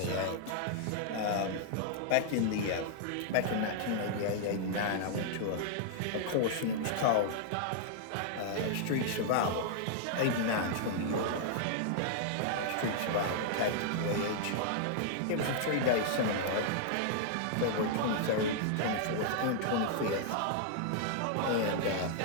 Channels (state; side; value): different; both; correlation -0.01